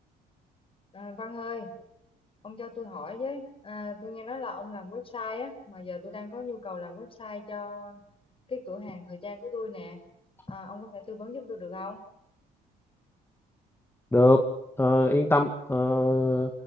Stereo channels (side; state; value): both; normal; correlation 0.85